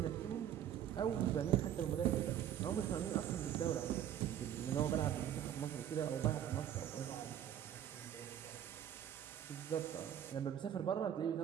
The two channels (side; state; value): left; quieter; 10.3 dB